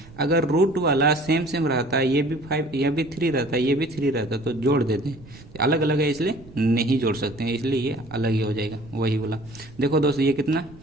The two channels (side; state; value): right; noise; rumble, 20 dB below the sound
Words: अगर रूट वाला सेम रहता है, ये भी 5 यह भी 3 रहता है, ये भी 3 रहता है, तो जोड़ देते हैं, अलग अलग है इसलिए नहीं जोड़ सकते हैं, इसलिए ये अलग ही हो जाएगा वही वाला। देखो दोस्त ये कितना